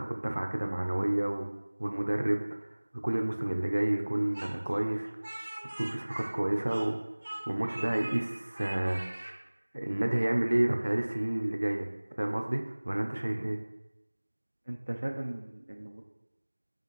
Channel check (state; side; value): inverted; both; correlation -1.00